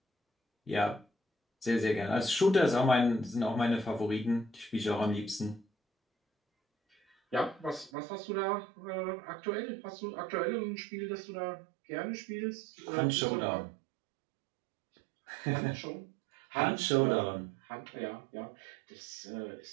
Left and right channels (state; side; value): drops out; left; at 7.9 s